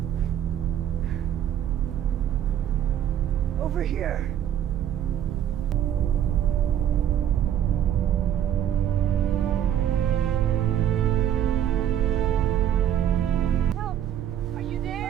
Over here. Help! Are you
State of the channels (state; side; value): quieter; left; 10.2 dB